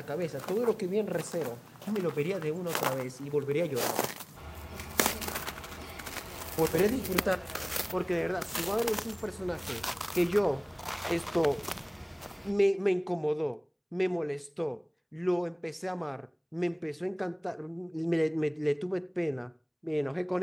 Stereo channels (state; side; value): identical; both; correlation 1.00